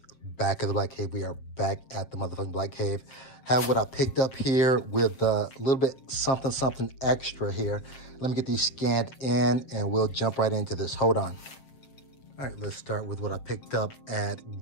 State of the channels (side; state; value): right; late; 7.6 ms